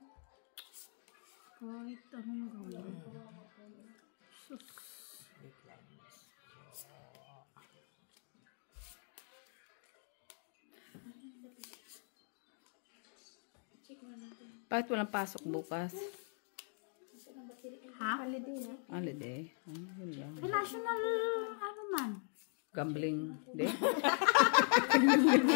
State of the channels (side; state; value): right; silent; 51 dB below the other